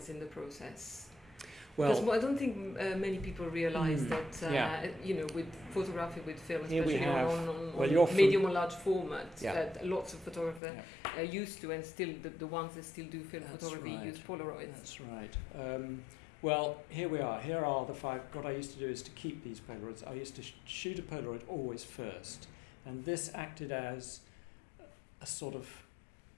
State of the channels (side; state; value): right; drops out; at 10.6 s